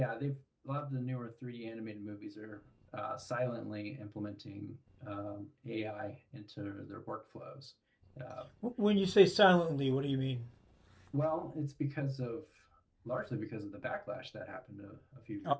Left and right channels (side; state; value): both; identical; correlation 1.00